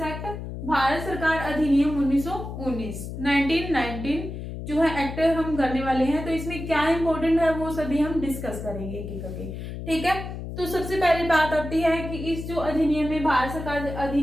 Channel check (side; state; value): left; noise; hum, 8 dB below the sound